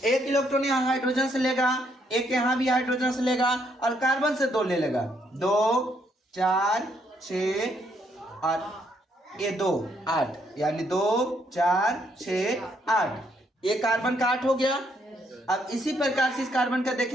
1 इलेक्ट्रॉन यहाँ हाइड्रोजन से लेगा, 1 यहाँ भी हाइड्रोजन से लेगा और कार्बन से 2 ले लेगा, 2, 4, 6 और ये 2, 8, यानी 2, 4, 6, 8, ये कार्बन का 8 हो गया। अब इसी प्रकार से इस कार्बन का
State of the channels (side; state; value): both; normal; correlation 0.72